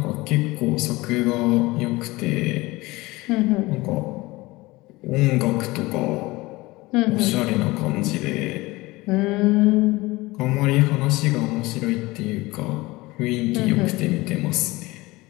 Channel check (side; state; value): right; quieter; 21.1 dB